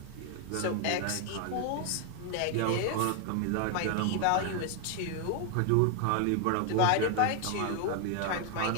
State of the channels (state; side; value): different; both; correlation 0.00